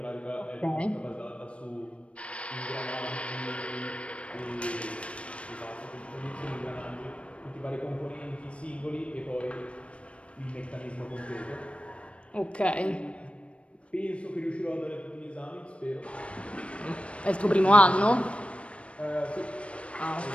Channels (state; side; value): late; right; 0.061 ms